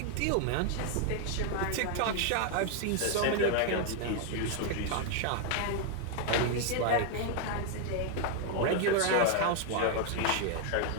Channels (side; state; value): both; different; correlation 0.00